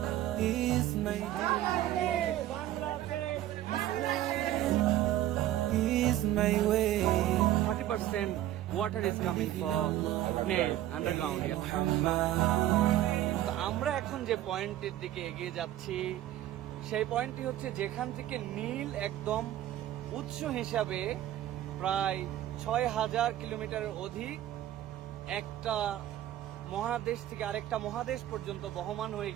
is my is my way. 30% water is coming from Nile underground. তো আমরা এখন যে পয়েন্টের দিকে এগিয়ে যাচ্ছি সেই পয়েন্টটি হচ্ছে যেখান থেকে নীল একদম উৎস হিসাবে প্রায় ৬,০০০ কিলোমিটারের অধিক একটা মহাদেশ থেকে আরেকটা মহাদেশ পর্যন্ত বহমান হয়ে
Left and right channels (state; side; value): quieter; left; 13.3 dB